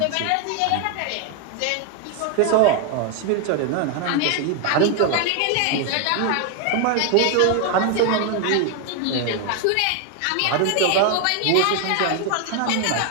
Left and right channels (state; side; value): different; both; correlation 0.01